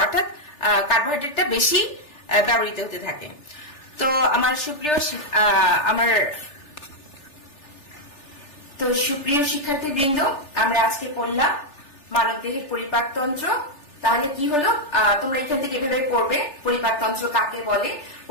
অর্থাৎ কার্বোহাইড্রেটটা বেশি ব্যবহৃত হতে থাকে। তো আমার সুপ্রিয় শিক্ষার্থীবৃন্দ, আমরা আজকে পড়লাম মানব দেহের পরিপাকতন্ত্র। তাহলে কি হলো? তোমরা এখান থেকে এভাবে পড়বে, পরিপাকতন্ত্র কাকে বলে,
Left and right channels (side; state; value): right; late; 3.4 ms